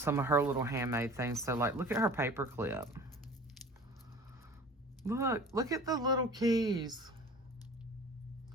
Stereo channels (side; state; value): both; normal; correlation 0.43